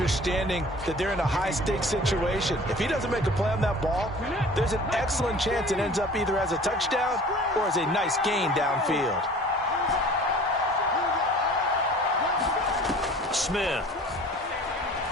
that they're in a high-stakes situation. If he doesn't make a play on that ball, there's an excellent chance it ends up either as a touchdown or as a nice gain downfield. Smith.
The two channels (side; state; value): both; normal; correlation 0.46